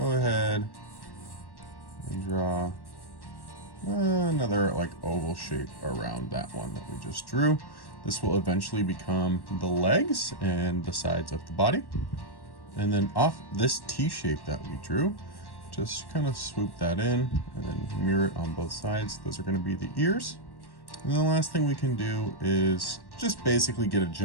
ahead and draw another like oval shape around that one that we just drew. This will eventually become the legs and the sides of the body. And then off this T shape that we drew, just kind of swoop that in and then mirror it on both sides. Those are going to be the ears. And the last thing we can do is just basically get a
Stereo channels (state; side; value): late; right; 1.1 ms